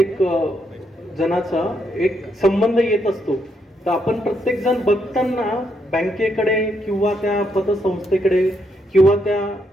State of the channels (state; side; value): normal; both; correlation 0.77